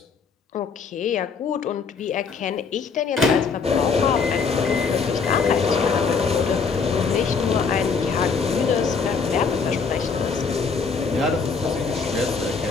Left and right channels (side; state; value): right; quieter; 5.2 dB